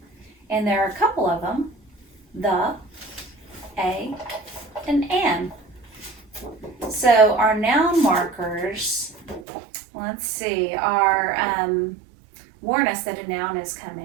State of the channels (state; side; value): drops out; left; at 9.5 s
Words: And there are a couple of them, the, a, and an. So our noun markers, let's see, are warn us that a noun is